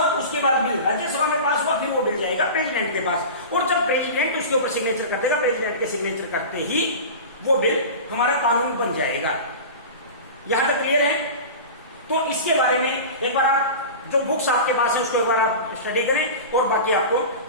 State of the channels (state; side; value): inverted; both; correlation -0.31